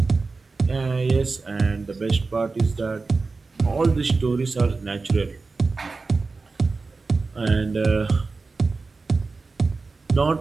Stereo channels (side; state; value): left; quieter; 4.0 dB